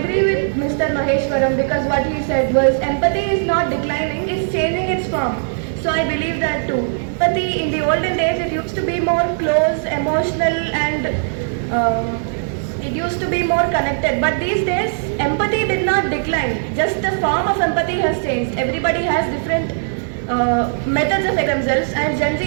with Mr. Maheshwaram because what he said was empathy is not declining, it's changing its form. So I believe that too. Empathy in the olden days, it used to be more close, emotional and it used to be more connected. But these days, empathy did not decline. Just the form of empathy has changed. Everybody has different methods of themselves and Gen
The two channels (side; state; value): left; silent; 56 dB below the other